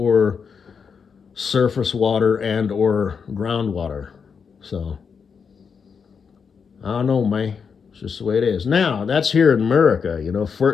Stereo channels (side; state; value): right; quieter; 6.2 dB